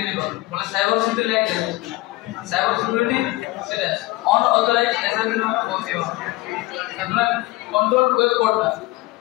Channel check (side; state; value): right; quieter; 20.0 dB